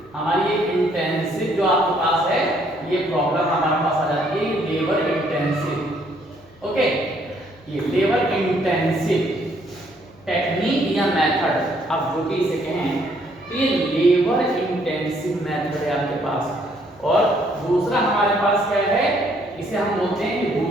हमारी ये इंटेंसिव जो आपके पास है ये प्रॉब्लम हमारे पास आ जाती है लेबर इंटेंसिव। ओके, ये लेबर इंटेंसिव टेक्निक या मेथड आप जो भी इसे कहें तो ये लेबर इंटेंसिव मेथड है आपके पास। और दूसरा हमारे पास क्या है, इसे हम बोलते हैं,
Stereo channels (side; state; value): left; noise; hum, 28 dB below the sound